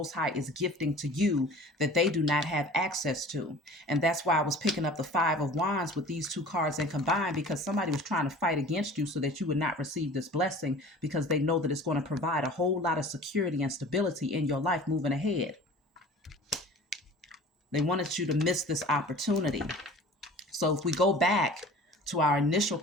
High is gifting to you that they do not have access to. And that's why I was picking up the Five of Wands with these two cards and combined, because somebody was trying to fight against you so that you would not receive this blessing, because they know that it's going to provide a whole lot of security and stability in your life moving ahead. They wanted you to miss this opportunity. So if we go back to our initial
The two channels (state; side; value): normal; both; correlation 0.43